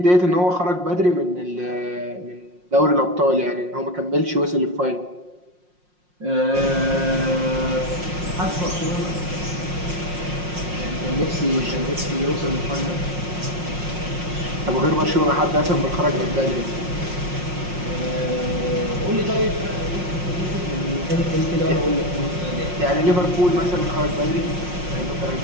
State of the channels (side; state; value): left; late; 5.6 ms